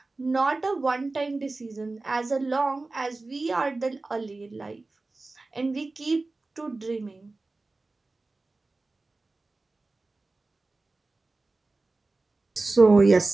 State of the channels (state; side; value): quieter; left; 3.4 dB